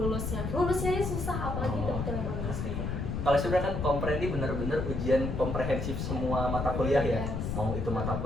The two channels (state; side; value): noise; left; rumble, 3 dB below the sound